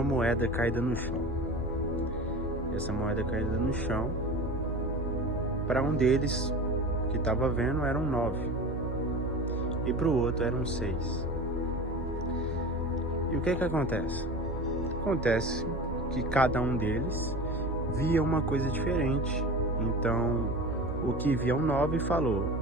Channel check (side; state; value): both; normal; correlation 0.32